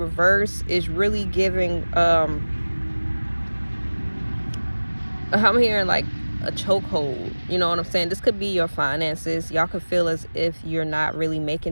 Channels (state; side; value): inverted; both; correlation -1.00